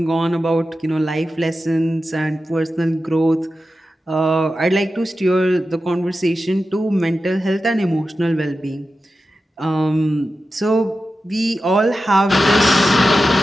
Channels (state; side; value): normal; both; correlation 0.92